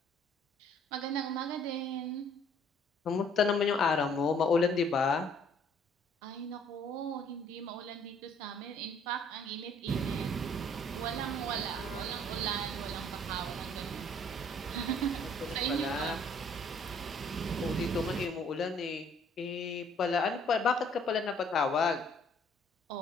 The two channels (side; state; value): both; normal; correlation 0.60